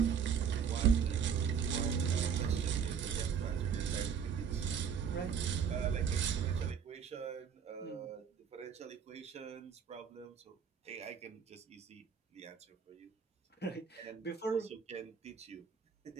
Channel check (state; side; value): quieter; left; 7.2 dB